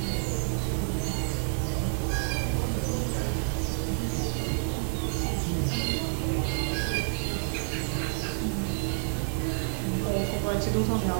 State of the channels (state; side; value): silent; left; digital silence